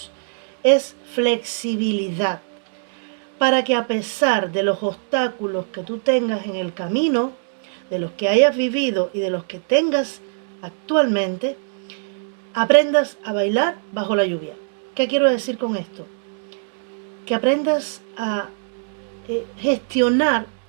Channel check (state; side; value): silent; left; digital silence